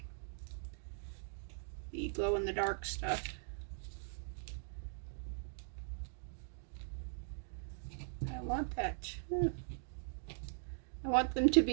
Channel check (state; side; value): silent; left; digital silence